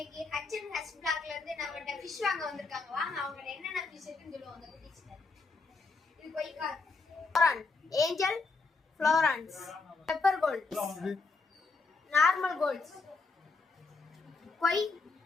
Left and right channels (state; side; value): quieter; right; 4.0 dB